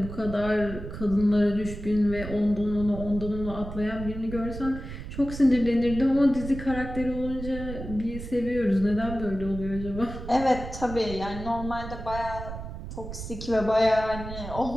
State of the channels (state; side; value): noise; right; rumble, 9 dB below the sound